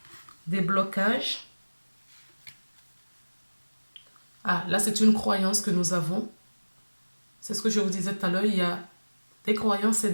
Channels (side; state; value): both; inverted; correlation -1.00